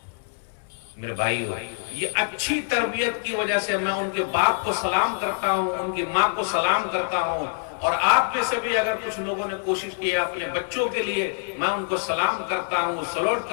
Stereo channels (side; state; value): right; silent; 62 dB below the other